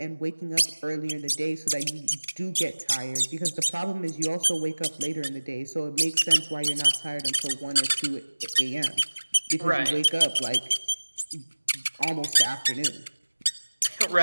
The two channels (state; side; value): inverted; both; correlation -1.00